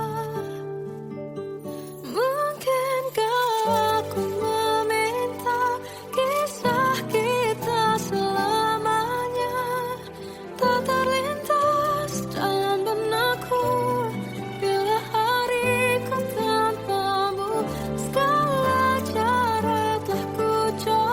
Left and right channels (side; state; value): both; identical; correlation 1.00